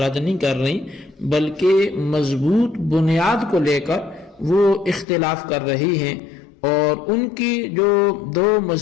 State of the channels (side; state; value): right; drops out; at 5.1 s